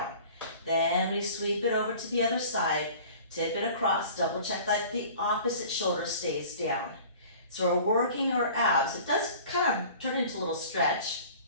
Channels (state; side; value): inverted; both; correlation -0.45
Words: Then we sweep it over to the other side, tip it across, double check that the opposite shoulder stays down. So we're working our abs. It does kind of turn into a little stretch,